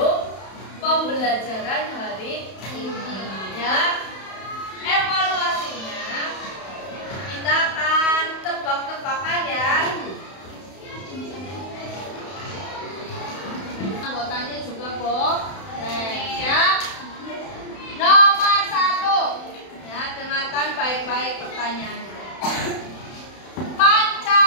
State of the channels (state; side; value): late; right; 31 ms